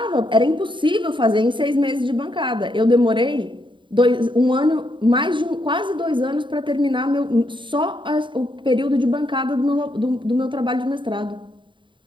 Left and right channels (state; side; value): late; left; 0.23 ms